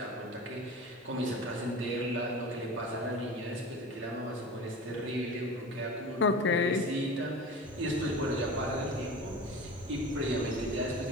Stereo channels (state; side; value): normal; both; correlation 0.34